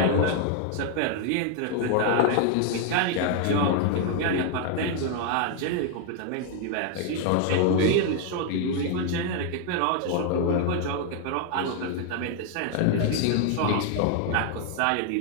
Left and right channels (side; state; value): both; different; correlation 0.00